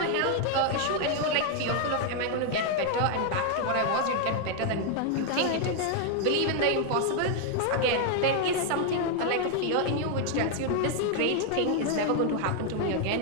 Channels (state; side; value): different; both; correlation 0.00